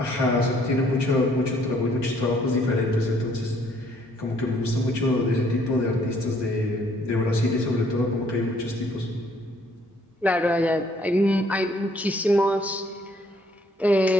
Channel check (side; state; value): both; normal; correlation 0.64